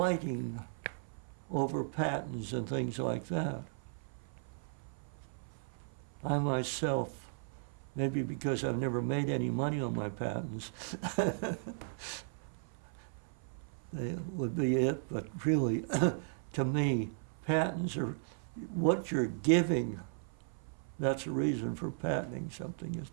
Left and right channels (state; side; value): silent; left; 54 dB below the other